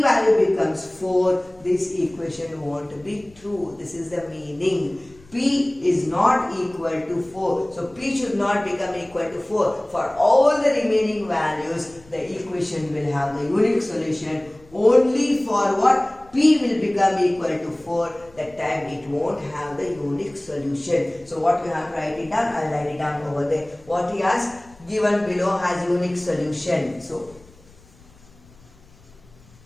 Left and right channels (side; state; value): left; noise; rumble, 26 dB below the sound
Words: value becomes 4, this equation won't be true. This is the meaning. P is not equal to 4. So P should not become equal to 4. For all the remaining values, the equation will have the unique solution. Only for what? P will become equal to 4. That time it won't have the unique solution. So what you have to write it down? I'll write it down over there. What he has given below has unique solution. So